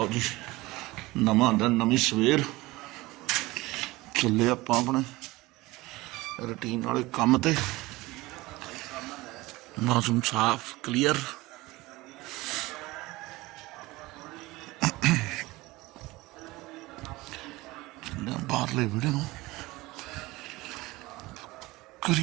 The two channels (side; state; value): left; quieter; 20.5 dB